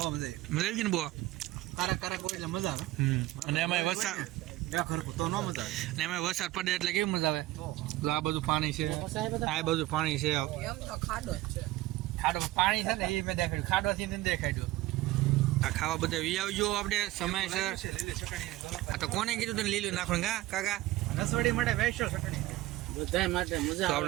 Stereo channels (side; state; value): left; quieter; 17.1 dB